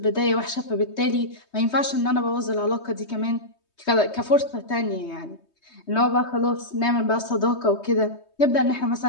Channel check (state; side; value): late; right; 3.2 ms